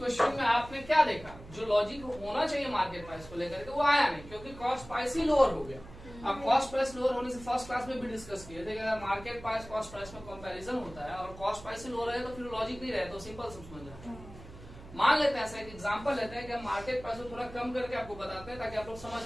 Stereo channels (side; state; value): right; noise; hum, 17 dB below the sound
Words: में आपने क्या देखा, जो लॉजिक होना चाहिए मार्केट प्राइस को लेकर के वो आया नहीं, क्योंकि कॉस्ट प्राइस ही लोअर हो गया। अब कॉस्ट प्राइस लोअर होने से फर्स्ट क्लास में भी डिस्कस किए थे कि अगर मार्केट प्राइस कॉस्ट प्राइस में कंपैरिजन होता है और कॉस्ट प्राइस से लोअर है तो फिर लॉजिक नहीं रहे, तो सिंपल समझ रहे हैं। मान लेते हैं ऐसा एक एग्जांपल लेते हैं कि हम मार्केट प्राइस को थोड़ा कम करके आपको बताते हैं ताकि आप लोग समझ